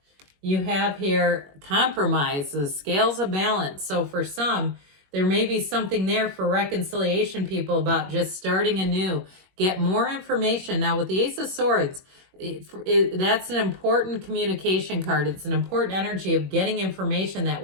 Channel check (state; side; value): late; left; 21 ms